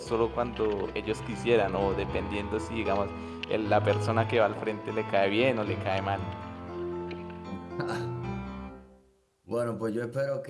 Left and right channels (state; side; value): identical; both; correlation 1.00